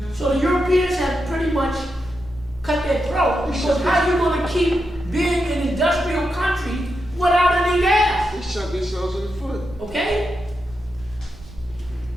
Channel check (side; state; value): right; noise; rumble, 20 dB below the sound